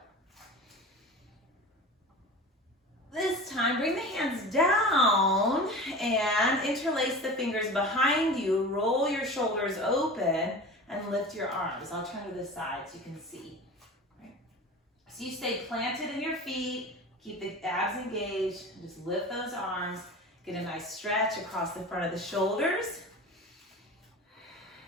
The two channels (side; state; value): both; normal; correlation 0.34